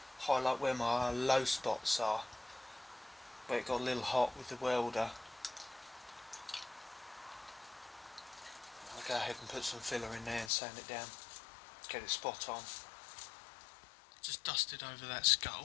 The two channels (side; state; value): right; drops out; at 10.5 s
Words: highlight where my low spots are, where it got a little hot with the welder. I'll go ahead and put some filler in there and sand it down, get it spot on. Just dusted over that